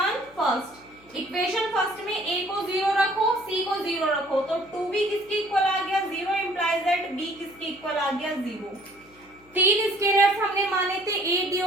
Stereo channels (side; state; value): left; noise; hum, 28 dB below the sound